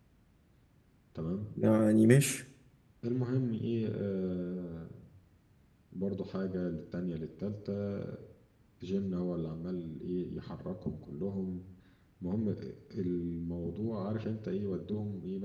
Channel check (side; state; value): both; identical; correlation 1.00